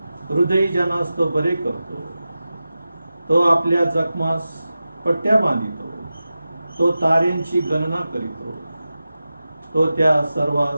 हृदयी जनास तो बरे करतो, तो आपल्या जखमास पट्ट्या बांधितो, तो ताऱ्यांची गणना करीतो, तो त्या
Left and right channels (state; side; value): inverted; both; correlation -0.93